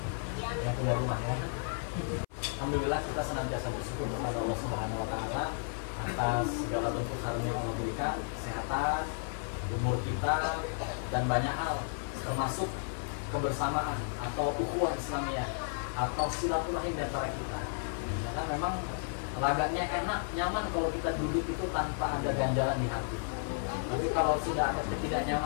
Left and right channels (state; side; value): silent; right; 56 dB below the other